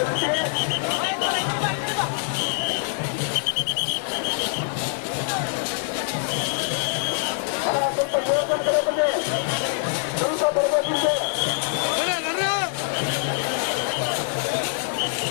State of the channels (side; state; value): right; silent; digital silence